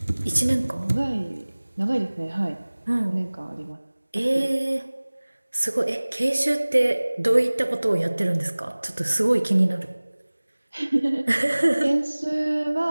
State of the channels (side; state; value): both; inverted; correlation -1.00